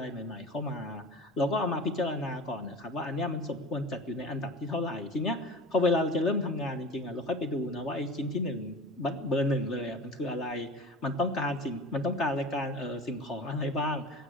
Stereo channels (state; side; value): normal; both; correlation 0.35